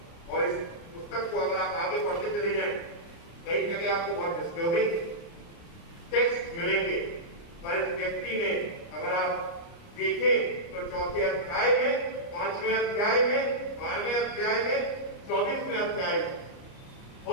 और इस पुस्तक को अगर आप आगे पढ़ते चले जाएं, कई जगह आपको बहुत डिस्टर्बिंग टेक्स्ट मिलेंगे, पर इस व्यक्ति ने अगर आप देखें तो चौथे अध्याय में, 5वें अध्याय में, 12वें अध्याय में, 24वें अध्याय में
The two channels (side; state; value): right; late; 29 ms